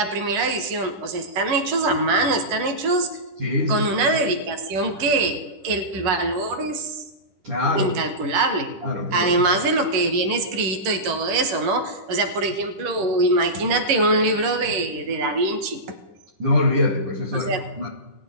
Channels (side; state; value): left; late; 10 ms